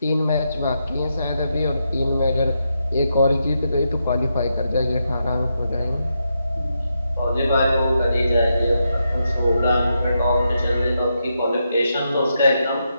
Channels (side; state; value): both; inverted; correlation -0.84